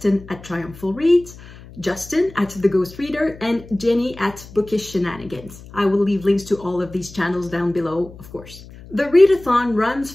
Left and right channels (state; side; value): noise; left; hum, 18 dB below the sound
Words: at Triumphal Reads, Justin at The Ghost Reader, and Jenny at Bookish Shenanigans. I will leave links to all of these channels down below, of course. The readathon runs